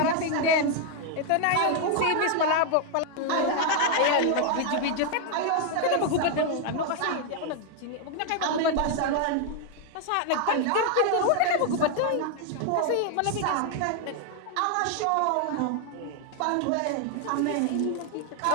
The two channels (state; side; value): different; both; correlation 0.00